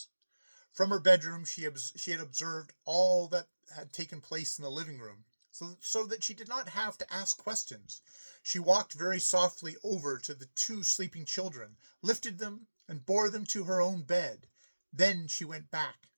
From her bedroom, she had observed all that had taken place in the living room, so that she did not have to ask questions. She walked very softly over to the two sleeping children, lifted them, and bore them to her own bed. Then she went back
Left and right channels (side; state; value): both; inverted; correlation -1.00